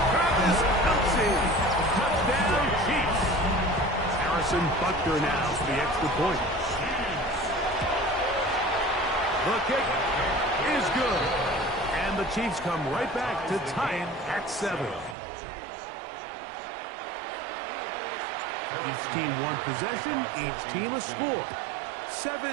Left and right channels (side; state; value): left; drops out; at 15.2 s